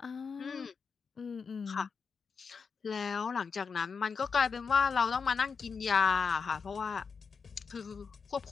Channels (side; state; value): right; quieter; 5.6 dB